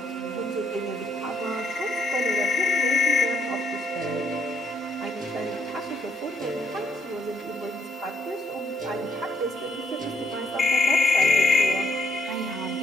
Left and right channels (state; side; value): normal; both; correlation 0.74